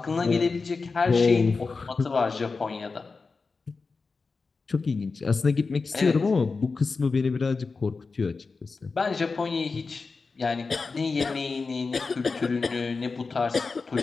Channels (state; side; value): quieter; right; 4.3 dB